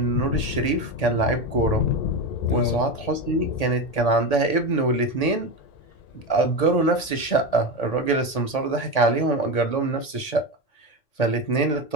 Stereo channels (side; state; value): right; late; 1.8 ms